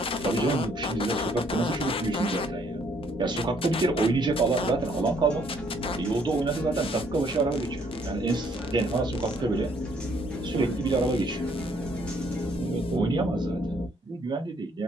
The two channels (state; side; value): normal; both; correlation 0.66